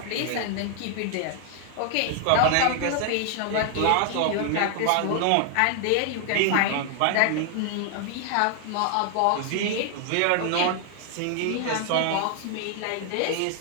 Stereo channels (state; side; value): different; both; correlation 0.00